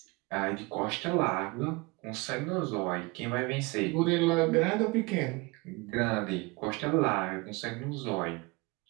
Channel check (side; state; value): left; quieter; 25.6 dB